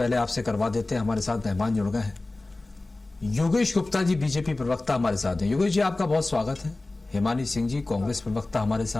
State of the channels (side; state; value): right; quieter; 3.0 dB